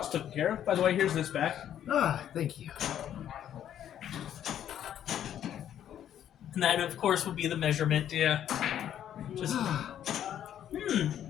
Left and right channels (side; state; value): right; quieter; 10.4 dB